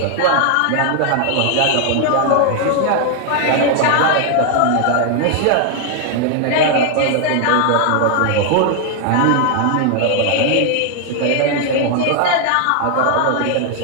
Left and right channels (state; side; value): different; both; correlation 0.00